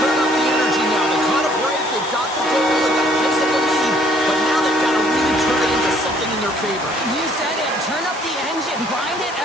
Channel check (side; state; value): both; normal; correlation 0.62